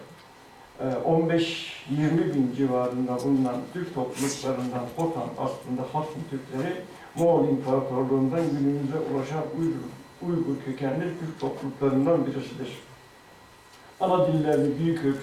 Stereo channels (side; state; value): both; identical; correlation 1.00